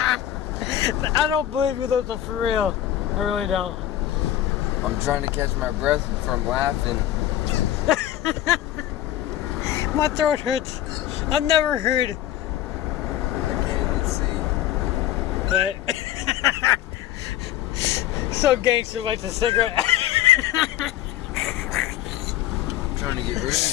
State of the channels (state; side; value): quieter; right; 12.6 dB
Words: I don't believe you, those are for real. I really don't. I'm trying to catch my breath from laughing. My throat hurts. I've never heard. I can't even see. But so gangster lights a cigarette. I'm trying to get rid of